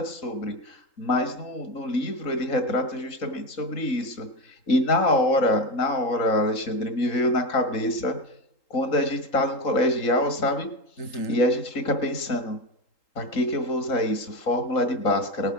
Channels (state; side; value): late; right; 3.8 ms